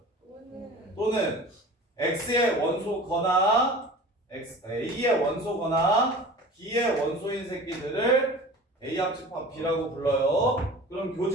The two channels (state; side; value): normal; both; correlation 0.39